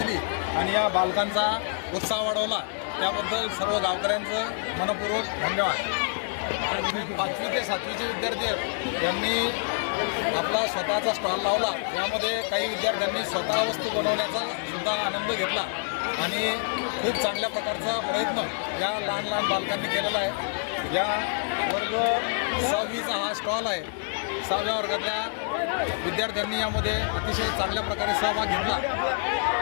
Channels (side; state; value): right; silent; 58 dB below the other